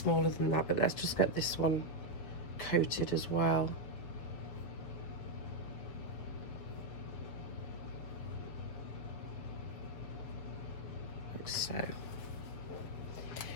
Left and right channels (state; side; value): late; right; 7.2 ms